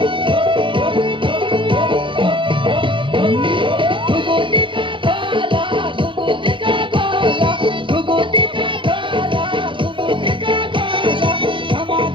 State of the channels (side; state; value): left; late; 0.24 ms